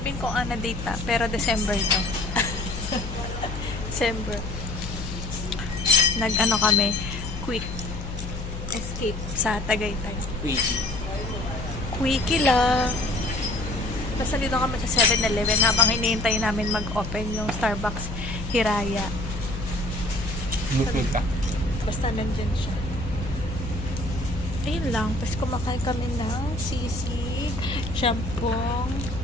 kung ano date na, pero December to. December. Nag-ano kami, quick escape sa Tagaytay. Quickie lang. Basta dito kami sa 7-Eleven habang hinihintay namin mag-open yung Starbucks Hiraya. Mukmuk ka? Basta nandyan siya. Ayun lang. Tapos kumakain kami ng sisig, champong,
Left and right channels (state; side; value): noise; left; hum, 7 dB below the sound